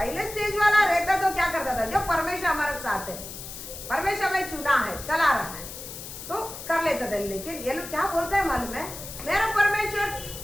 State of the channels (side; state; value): left; noise; hiss, 11 dB below the sound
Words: रहता तो क्या करता था? जो परमेश्वर हमारे साथ है, परमेश्वर में चुना है, चला रहा है, तो कर लेता था। लेकिन ये लोग क्या बोलते हैं मालूम है? मेरा परमेश्वर